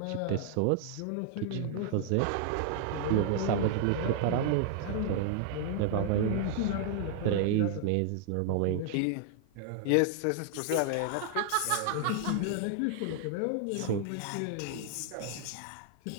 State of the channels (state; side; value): different; both; correlation 0.00